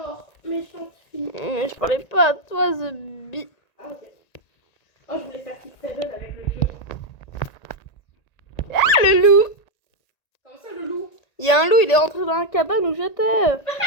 méchante fille. Mais je parlais pas à toi, The Bee. Ah, ok. Oh, je voulais faire Kick Seven avec le jeu. Ah, le loup. Comment ça, le loup? Il y a un loup, il est rentré dans la cabane où j'étais.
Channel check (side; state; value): right; late; 1.9 ms